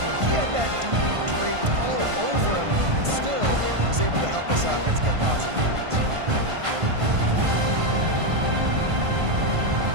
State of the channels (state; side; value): late; left; 1.5 ms